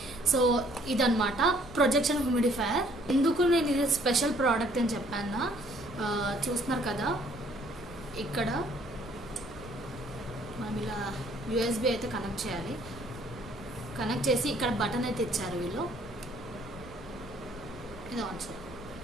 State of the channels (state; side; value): noise; right; rumble, 19 dB below the sound